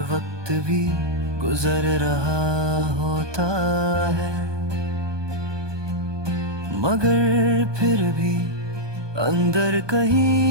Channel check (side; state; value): left; late; 1.2 ms